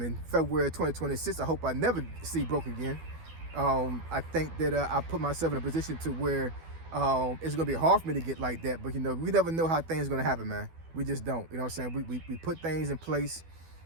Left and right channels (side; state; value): left; late; 12 ms